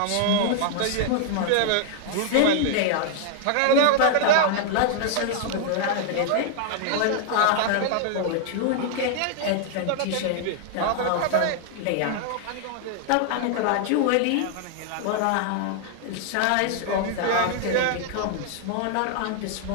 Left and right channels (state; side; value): different; both; correlation 0.00